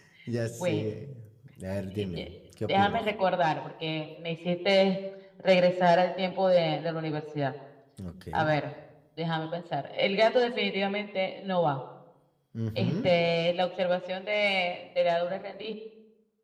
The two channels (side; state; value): both; identical; correlation 1.00